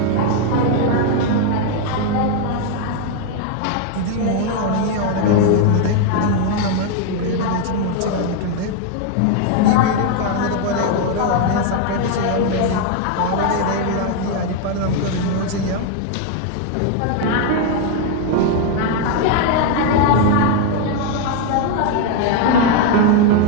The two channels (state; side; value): different; both; correlation 0.01